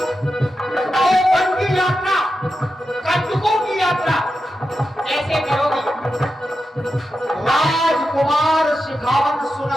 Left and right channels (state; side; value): normal; both; correlation 0.89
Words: तो वन की यात्रा, कंटकों की यात्रा कैसे करोगी? राजकुमार शिखावन